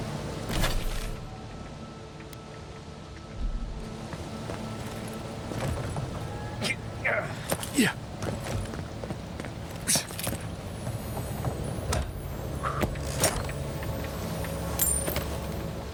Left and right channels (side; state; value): both; identical; correlation 1.00